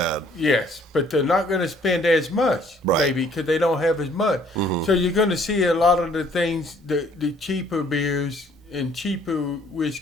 yes, but they're not going to spend as much, Right. maybe, because they don't have as much. So you're going to see a lot of the things, the cheaper beers and cheaper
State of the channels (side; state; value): both; normal; correlation 0.60